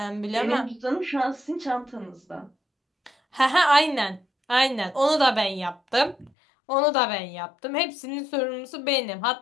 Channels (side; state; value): right; drops out; at 6.3 s